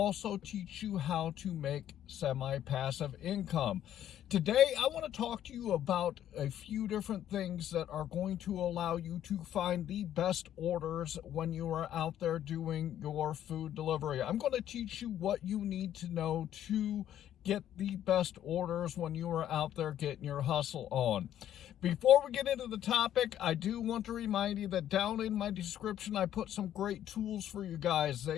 teach you how to make semi-passive income. Today I want to talk to you about a few different things that are going to allow you to find the best orders when you are out there doing your food delivery. I'm going to teach you what you need to know to get the best orders when you are out there getting your hustle on. Before we get into the topic, I do want to remind you that down in my description, I put some great tools for you guys.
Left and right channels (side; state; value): right; quieter; 11.2 dB